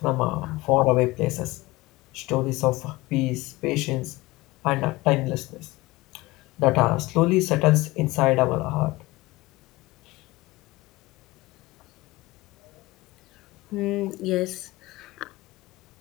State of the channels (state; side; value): quieter; right; 20.7 dB